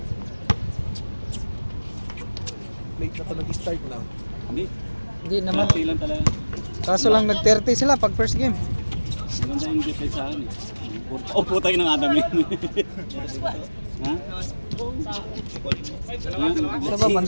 Late na pa nag-start na. Hindi. Hindi naman. Konti lang talaga. Kaso lang nag-30 sila pag first game. Maganda yung defense sa akin eh. Oh, putay ng Adam yun. Ha? Sa ba,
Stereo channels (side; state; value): both; inverted; correlation -1.00